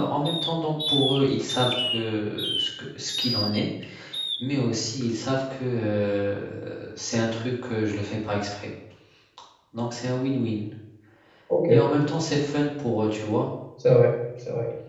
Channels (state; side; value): identical; both; correlation 1.00